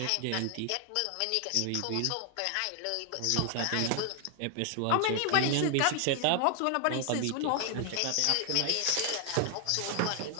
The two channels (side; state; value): both; different; correlation 0.00